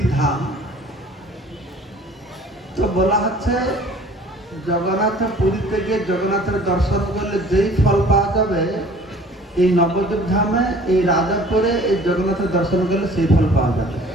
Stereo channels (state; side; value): normal; both; correlation 0.50